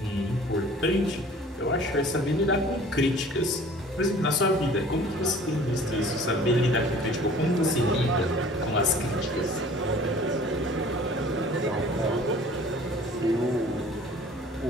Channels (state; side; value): normal; both; correlation 0.49